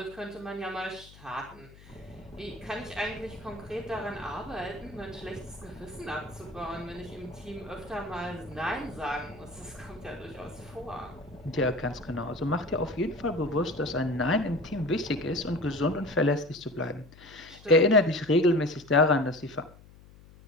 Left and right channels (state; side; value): noise; left; hum, 22 dB below the sound